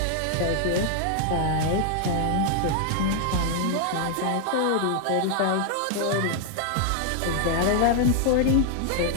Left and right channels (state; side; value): different; both; correlation 0.00